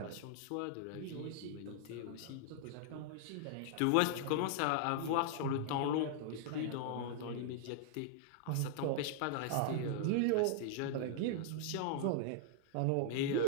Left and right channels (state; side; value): different; both; correlation -0.01